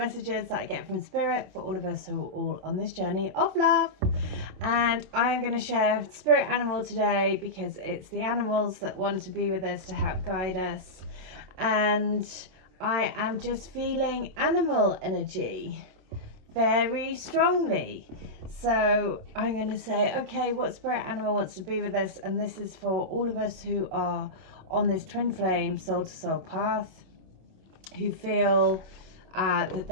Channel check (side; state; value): left; late; 27 ms